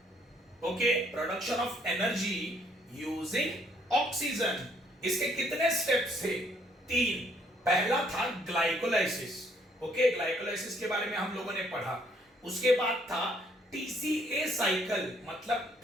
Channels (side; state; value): both; normal; correlation 0.67